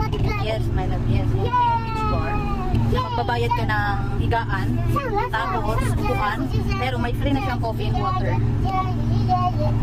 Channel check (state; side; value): identical; both; correlation 1.00